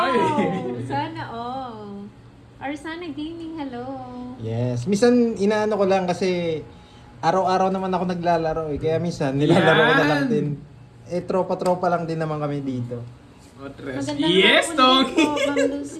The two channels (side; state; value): both; identical; correlation 1.00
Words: kayo eh. Sana all. Arsana Gaming, hello. Yes. Minsan, inaano ko lang kasi araw-araw naman ako naglalaro eh. Kaya minsan, nilalaro ko na lang Yan. din. Eh, tropa-tropa lang din naman kami dito. Oh, tres. Magandang Yes, hapon Tong! din po, Ma'am